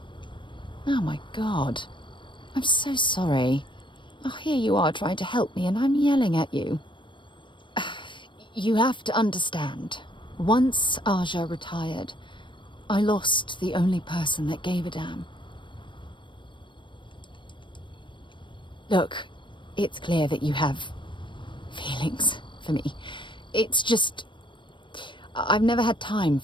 Oh my god. I'm so sorry. Oh, here you are trying to help me and I'm yelling at you. You have to understand. Once Aja retired, I lost the only person that gave a damn. Look, it's clear that you have feelings for me. It's just... I've never had time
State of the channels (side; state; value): right; late; 0.23 ms